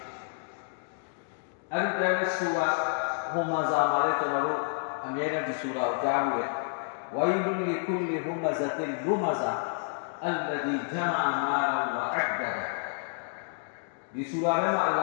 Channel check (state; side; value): silent; right; digital silence